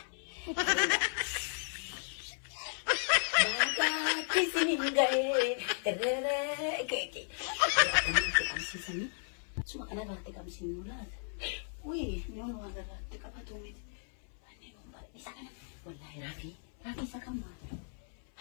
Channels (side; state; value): right; silent; 55 dB below the other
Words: bagatti sinin ga'ee keekii qabsiisanii suma kana irratti qabsiisnu laata noon waan irratti qabatu miti anneen umbara isa kana wallaahi raafii isa kan maal